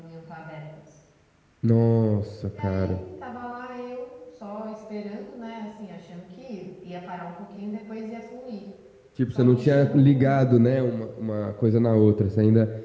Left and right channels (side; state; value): both; identical; correlation 1.00